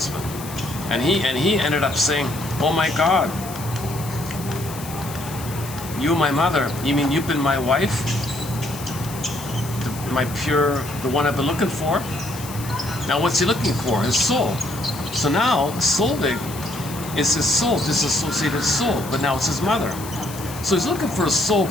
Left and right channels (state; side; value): noise; left; hiss, 13 dB below the sound